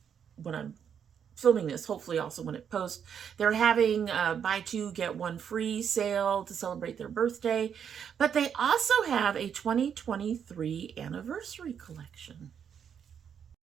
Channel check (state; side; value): quieter; left; 7.9 dB